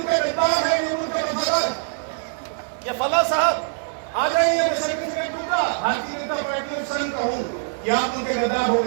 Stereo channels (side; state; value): left; silent; 63 dB below the other